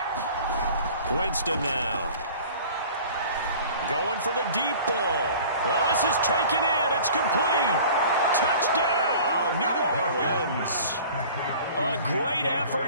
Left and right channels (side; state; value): both; inverted; correlation -0.45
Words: Winston now. Going for the deep ball. Well, this is taken in. It's complete. Touchdown, New Orleans. A great